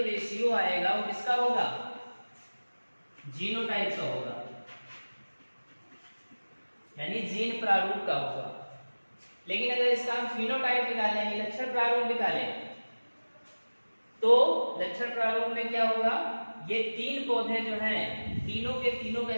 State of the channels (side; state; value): both; inverted; correlation -1.00